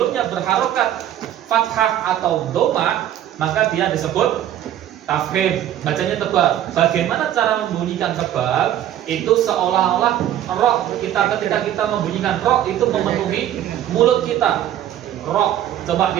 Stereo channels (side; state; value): left; quieter; 11.6 dB